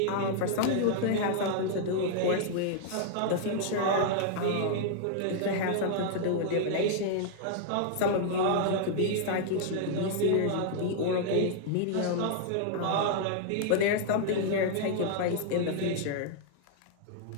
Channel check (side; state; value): both; different; correlation -0.01